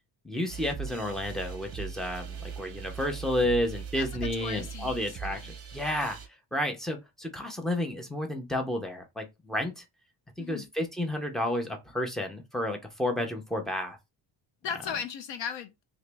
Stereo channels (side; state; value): both; normal; correlation 0.62